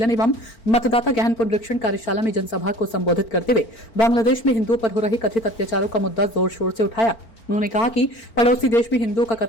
एवं मतदाता गहन पुनरीक्षण कार्यशाला में जनसभा को संबोधित करते हुए बांग्लादेश में हिंदुओं पर हो रहे कथित अत्याचारों का मुद्दा जोर शोर से उठाया। उन्होंने कहा कि पड़ोसी देश में हिंदुओं का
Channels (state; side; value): late; right; 4.4 ms